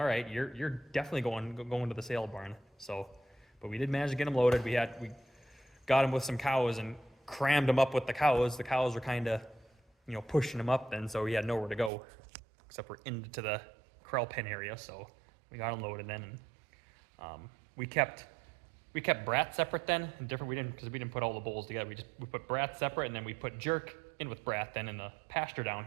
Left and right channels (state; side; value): drops out; left; at 11.9 s